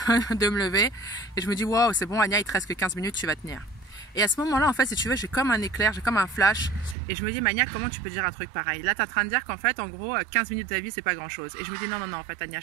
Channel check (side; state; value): left; drops out; at 7.0 s